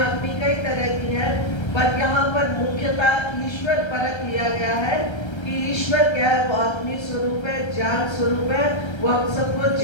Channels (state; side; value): late; right; 1.3 ms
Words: कई तरह की है, पर यहाँ पर मुख्यतः ईश्वर परक लिया गया है कि ईश्वर क्या है? वो अग्नि स्वरूप है, ज्ञान स्वरूप है। वो हम सबको